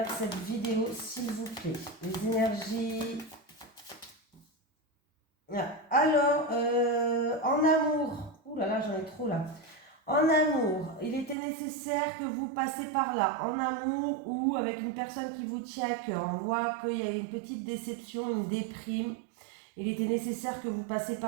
cette vidéo, s'il vous plaît. Les énergies. Alors, en amour. Ouh là là, j'en ai trop là. En amour, il était nécessaire que vous passiez par là. En amour ou avec une personne qui vous tient à cœur. On voit qu'il y a une petite déception, une déprime. Il était nécessaire que vous passiez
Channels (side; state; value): left; drops out; at 11.4 s